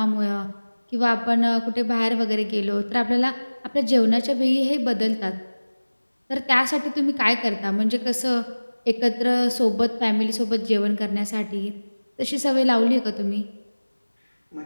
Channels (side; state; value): both; inverted; correlation -1.00